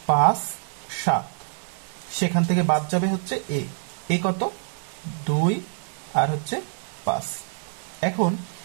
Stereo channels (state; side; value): silent; left; 56 dB below the other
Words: 5 7, সেখান থেকে বাদ যাবে হচ্ছে এ কত 2 আর হচ্ছে 5। এখন